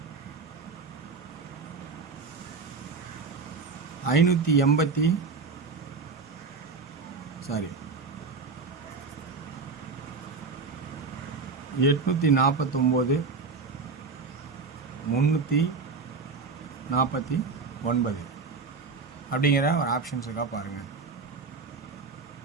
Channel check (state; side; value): quieter; left; 4.6 dB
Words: ஐநூற்றி 849, 349 அப்படிங்கிற ஒரு ஆப்ஷன்ஸ் இருக்கா பாருங்கள்.